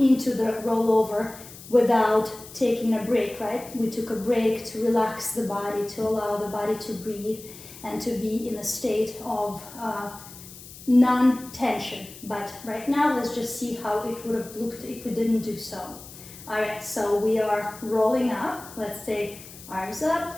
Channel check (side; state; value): left; noise; hiss, 17 dB below the sound